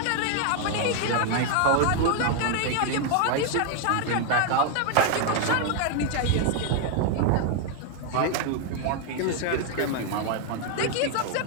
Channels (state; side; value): different; both; correlation 0.00